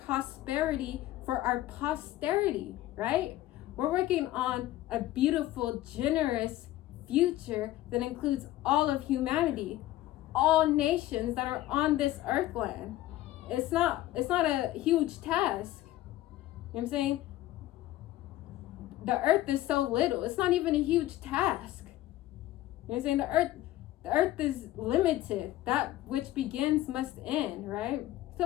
prosperity for our posterity, right? We're working on a beautiful, generous future that includes all of humanity, all nations that are on this earthland. It's not a huge task. You know what I'm saying? The earth is so little. It's not even a huge task. You know what I'm saying? The earth is limited. That which begins must end, right?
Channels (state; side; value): quieter; right; 15.2 dB